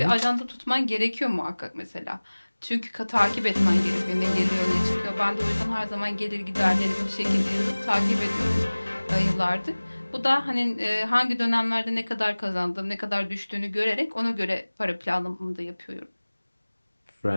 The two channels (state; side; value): inverted; both; correlation -1.00